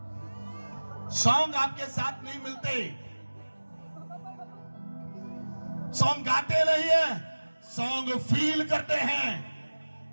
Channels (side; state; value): both; inverted; correlation -1.00